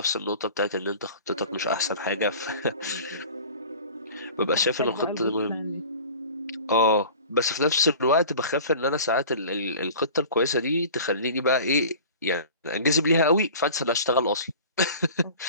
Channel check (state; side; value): inverted; both; correlation -0.41